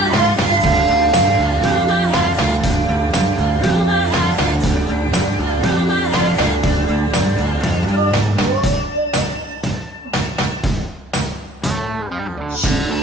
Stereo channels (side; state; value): both; normal; correlation 0.59